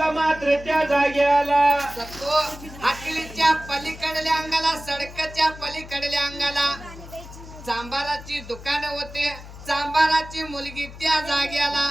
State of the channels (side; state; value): left; noise; hum, 15 dB below the sound